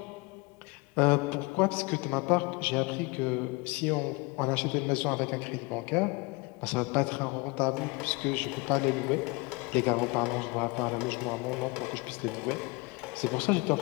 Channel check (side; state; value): right; quieter; 26.4 dB